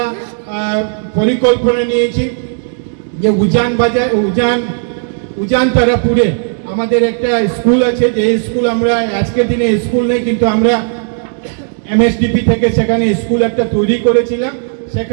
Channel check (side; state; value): left; silent; digital silence